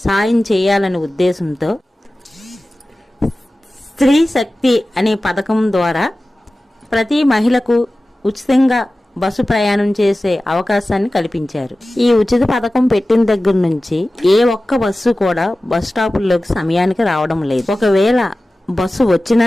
సాయం చేయాలనే ఉద్దేశంతో స్త్రీ శక్తి అనే పథకం ద్వారా ప్రతి మహిళకు ఉచితంగా బస్సు ప్రయాణం చేసే అవకాశాన్ని కల్పించారు. ఈ ఉచిత పథకం పెట్టిన దగ్గర నుంచి ఏ ఒక్క బస్సు కూడా బస్ స్టాపుల్లోకి సమయానికి రావడం లేదు. ఒకవేళ బస్సు వచ్చినా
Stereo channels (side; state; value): both; normal; correlation 0.96